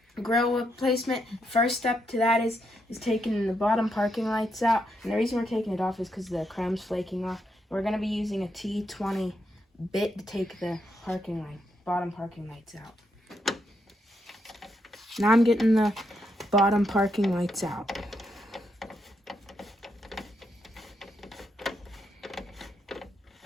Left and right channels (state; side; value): normal; both; correlation 0.80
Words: grill replacement. First step to that is taking the bottom parking lights out, and the reason we're taking it off is because the chrome's flaking off. We're going to be using a T20 bit to take the bottom parking lights out. Now I'm getting the bottom parking lights out.